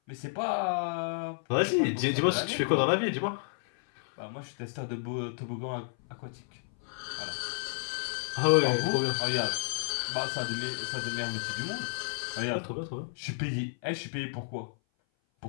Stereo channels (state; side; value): silent; right; 56 dB below the other